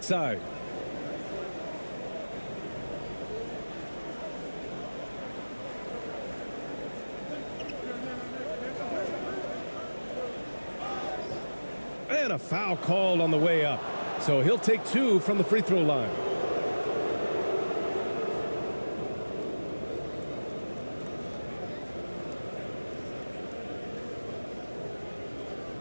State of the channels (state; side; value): inverted; both; correlation -1.00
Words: side. And a foul called on the way up. So he'll take 2 from the free throw line.